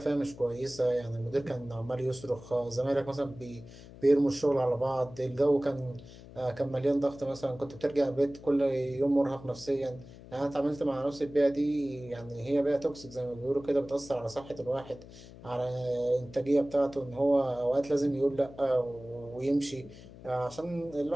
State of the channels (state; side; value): noise; left; hum, 18 dB below the sound